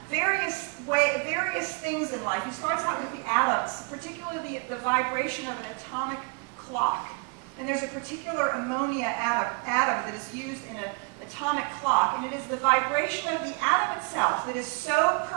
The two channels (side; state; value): left; quieter; 30.4 dB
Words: various things in life. He starts out with the atoms, particularly the vibration of an atomic clock. And there's a particular ammonia atom that is used in an atomic clock, and it is the vibration of the atom itself that is so